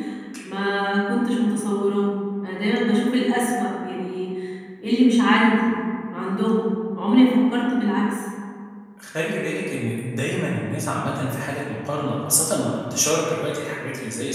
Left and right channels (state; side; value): identical; both; correlation 1.00